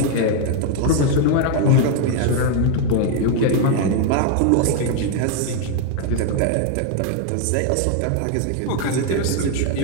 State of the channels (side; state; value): both; different; correlation 0.01